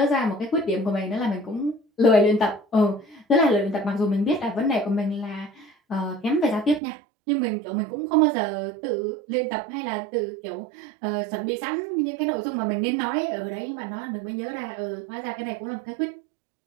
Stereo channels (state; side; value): drops out; left; at 6.8 s